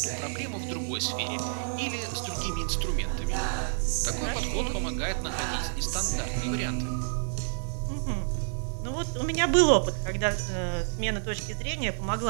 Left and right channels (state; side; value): silent; left; digital silence